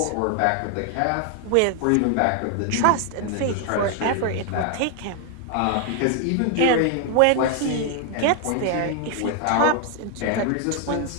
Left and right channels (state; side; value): different; both; correlation 0.00